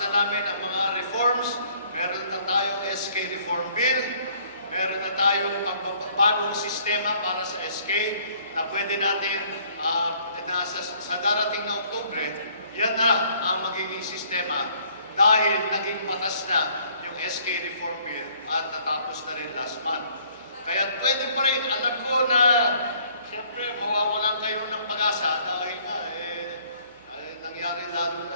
namin ang mga reforms, meron na tayong SK Reform Bill, meron na tayong pagbabagong sistema para sa SK na pwede natin sa darating na Oktubre, yan na ang magiging sistema dahil naging batas na yung SK Reform Bill at natapos na rin last month. Kaya pwede pa rin, alam ko na siyempre mawawalan kayo ng pag-asa dahil nga nangyari lalo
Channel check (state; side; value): inverted; both; correlation -0.61